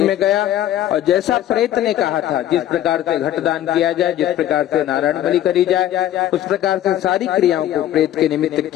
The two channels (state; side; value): quieter; right; 12.3 dB